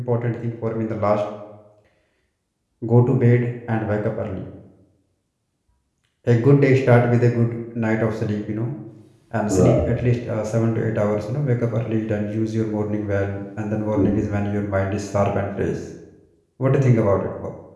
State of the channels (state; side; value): identical; both; correlation 1.00